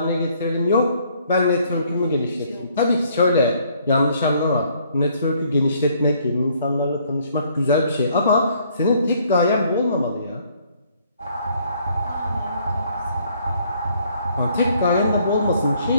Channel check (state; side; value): inverted; both; correlation -0.65